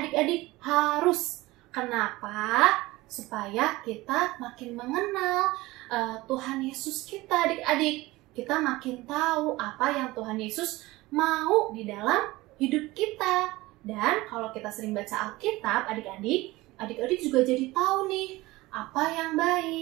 harus. Kenapa? Supaya kita makin mengenal Tuhan Yesus kita adik-adik. Kita makin tahu apa yang Tuhan Yesus mau di dalam hidup kita. Dan kalau kita sering baca Alkitab adik-adik, adik-adik juga jadi tahu nih apa yang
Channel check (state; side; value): quieter; left; 19.8 dB